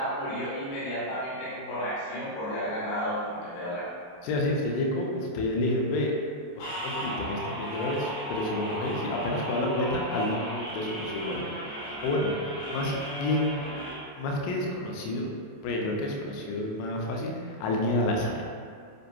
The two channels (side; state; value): right; late; 28 ms